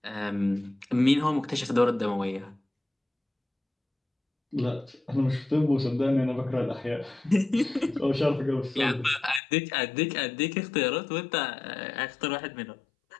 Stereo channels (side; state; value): right; drops out; at 9.4 s